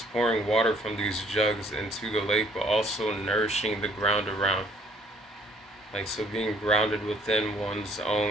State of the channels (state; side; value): normal; both; correlation 0.62